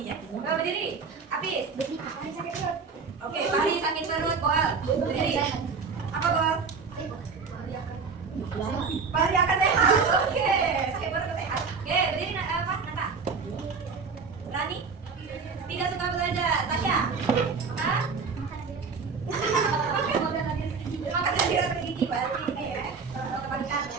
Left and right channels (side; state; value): left; quieter; 5.1 dB